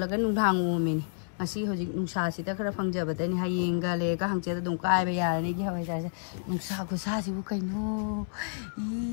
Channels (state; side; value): silent; right; 58 dB below the other